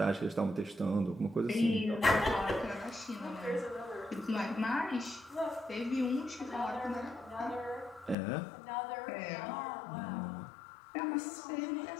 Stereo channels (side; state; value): right; drops out; at 8.2 s